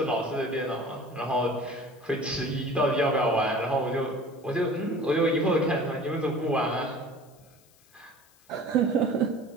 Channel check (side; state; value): left; noise; hiss, 30 dB below the sound